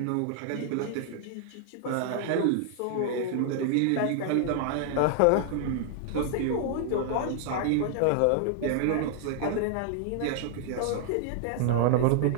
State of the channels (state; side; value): different; both; correlation -0.01